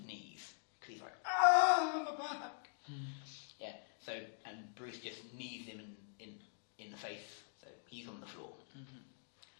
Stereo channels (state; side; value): silent; right; digital silence